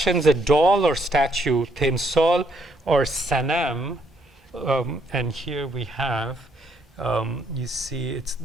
a doll or statue, Temsol or Sanam, and here we have, you see,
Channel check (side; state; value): both; normal; correlation 0.71